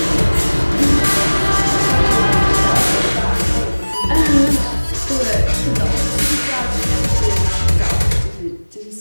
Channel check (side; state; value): both; inverted; correlation -1.00